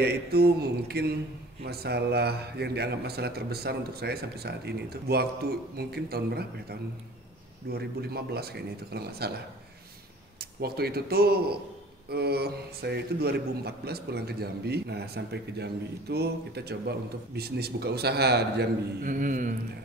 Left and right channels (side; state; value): both; normal; correlation 0.46